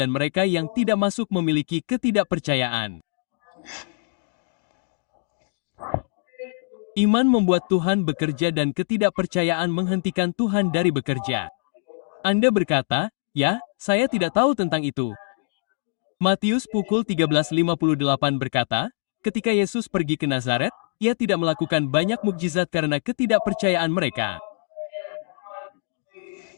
mereka yang tidak masuk memiliki ketidakpercayaan. Iman membuat Tuhan bekerja dan ketidakpercayaan menghentikan Tuhan dari bekerja. Anda berkata, "Ya, saya tidak tahu tentang itu." Matius pukul 13:58 berkata, ketika Yesus pergi ke Nazaret, ia tidak melakukan banyak mukjizat karena ketidakpercayaan mereka.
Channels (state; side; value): silent; right; digital silence